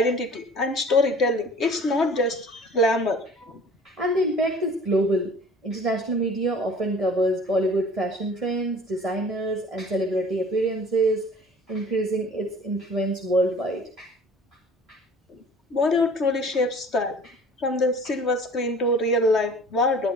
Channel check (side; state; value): both; normal; correlation 0.47